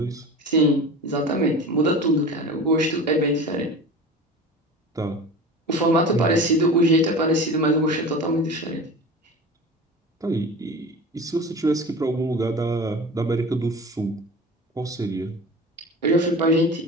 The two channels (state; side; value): normal; both; correlation 0.34